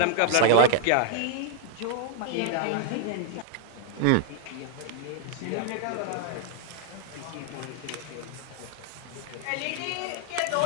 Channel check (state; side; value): different; both; correlation 0.00